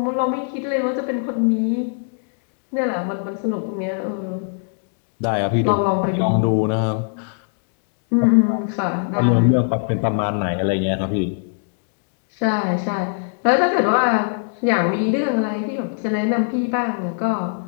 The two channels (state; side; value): silent; right; 65 dB below the other